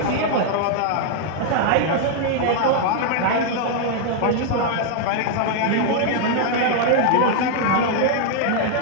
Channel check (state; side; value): different; both; correlation 0.00